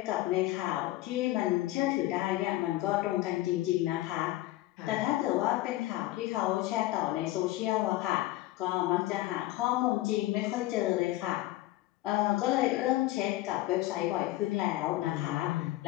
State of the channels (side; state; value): right; quieter; 17.0 dB